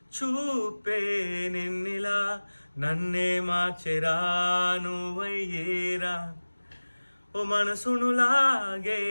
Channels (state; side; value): inverted; both; correlation -1.00